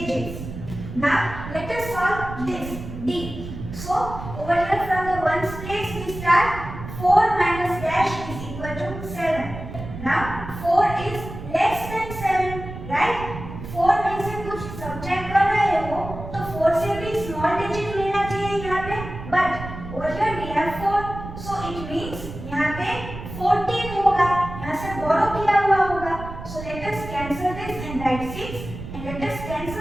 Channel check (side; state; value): right; noise; rumble, 10 dB below the sound